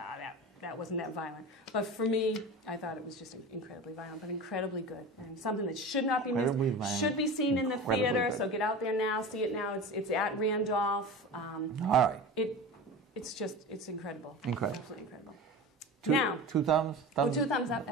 that wasn't that violent. But for me, I thought it was just incredibly violent, but incredibly good. And something that should not be missed, should be seen in the theater. Good. So get out there now, see it now. It's at Randolph. All right. It's incredible. Incredible. Absolutely incredible. Two thumbs? 2 thumbs up,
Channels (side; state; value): both; normal; correlation 0.31